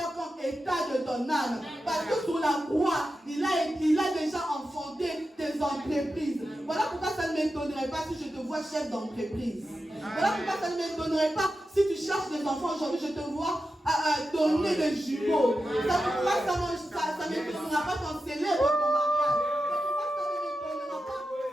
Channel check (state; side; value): normal; both; correlation 0.91